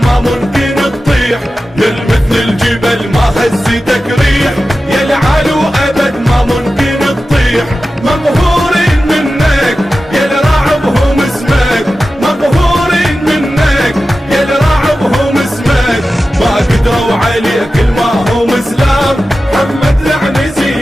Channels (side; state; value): both; normal; correlation 0.94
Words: ما ممكن تطيح. يا مثل الجبل ما هزتك ريح يا العالو ابد ما ممكن تطيح. مقهورين منك يا الراعبهم اسمك، مقهورين منك يا الراعبهم اسمك. ما قدروا عليك الما هم اسلام، محمد العنزي